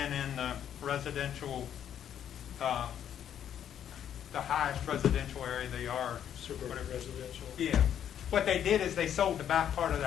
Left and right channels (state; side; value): quieter; right; 9.7 dB